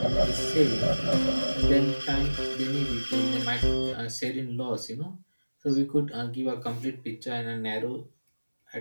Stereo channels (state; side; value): inverted; both; correlation -1.00